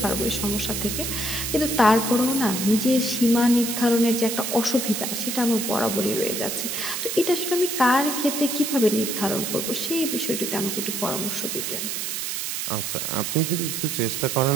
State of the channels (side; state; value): right; noise; hiss, 3 dB below the sound